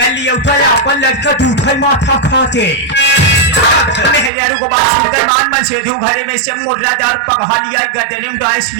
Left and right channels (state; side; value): drops out; left; at 4.3 s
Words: लिया उठा अपन लड़का दूठा माथा खाते। मेहरारू को बात सुनकर मान मन सेधु घरे में से मुर्रादार पकहा लिया गदने में डाइस